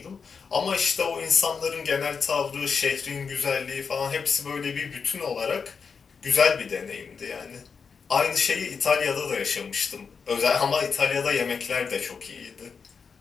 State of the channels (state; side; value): quieter; right; 5.7 dB